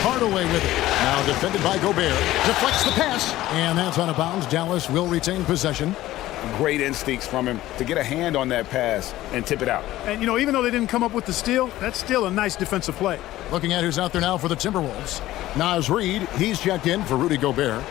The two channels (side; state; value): right; quieter; 15.5 dB